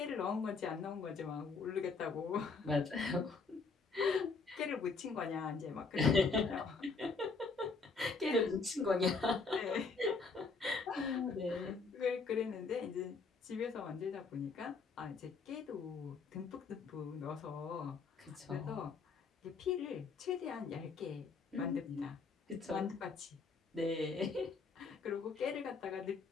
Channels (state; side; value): quieter; right; 4.5 dB